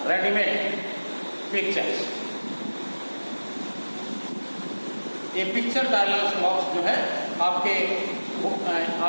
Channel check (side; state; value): both; inverted; correlation -1.00